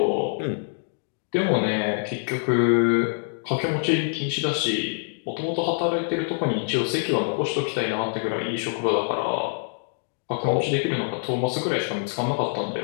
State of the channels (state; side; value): silent; right; digital silence